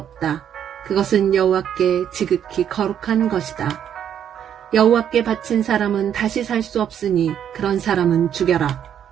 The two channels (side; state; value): left; quieter; 9.3 dB